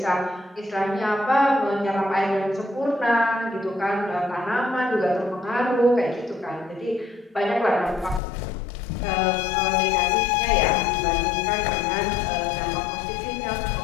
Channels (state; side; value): drops out; right; at 8.2 s